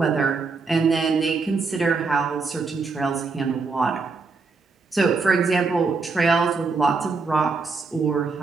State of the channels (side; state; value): left; quieter; 4.4 dB